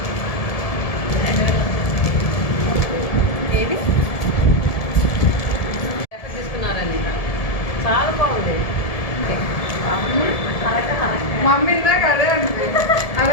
ఏది ఎక్కడ తీసుకున్నారని? చాలా బాగుంది. మమ్మీ ఇందాక అదే అండి, అది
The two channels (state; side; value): late; right; 1.7 ms